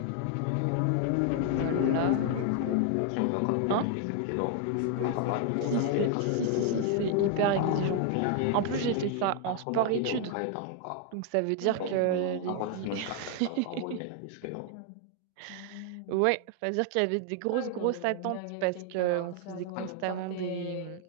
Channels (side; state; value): both; different; correlation 0.00